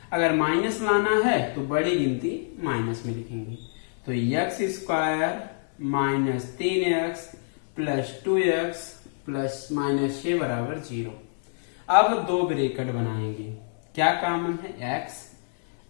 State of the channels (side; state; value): right; silent; digital silence